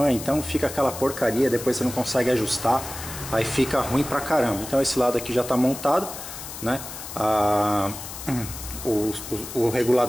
então fica aquela porcaria, depois você não consegue ajustar, aí fica ruim pra caramba. Então esse lado aqui já está montado, né? O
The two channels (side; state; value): left; noise; hiss, 10 dB below the sound